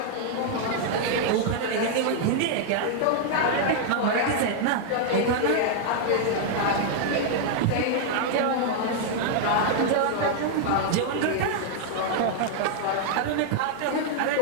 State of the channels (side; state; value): both; different; correlation -0.01